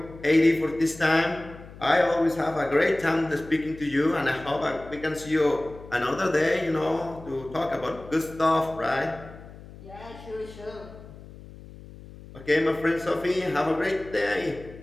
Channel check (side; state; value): left; noise; hum, 17 dB below the sound